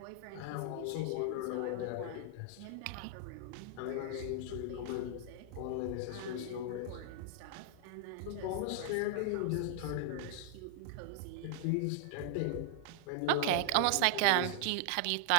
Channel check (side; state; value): both; different; correlation 0.00